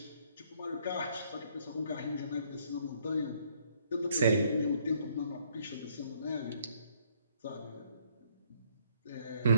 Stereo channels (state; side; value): inverted; both; correlation -0.66